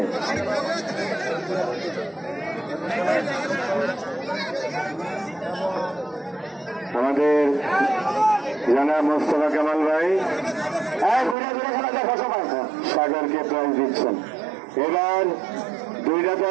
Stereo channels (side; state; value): left; drops out; at 11.4 s